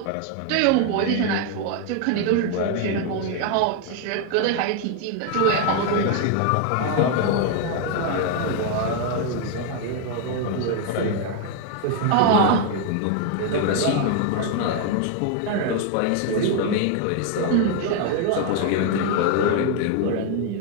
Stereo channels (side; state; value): both; different; correlation 0.00